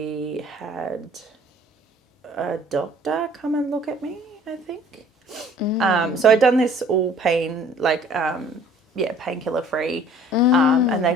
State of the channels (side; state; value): both; normal; correlation 0.53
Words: had a doctor come and look at me, I think. So I'd done this all pain, like, painkiller free. And they